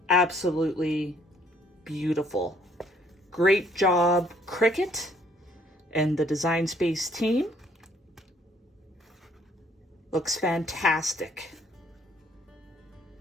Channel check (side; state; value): both; normal; correlation 0.64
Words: absolutely beautiful. Great job, Cricut and the Design Space team. Looks fantastic.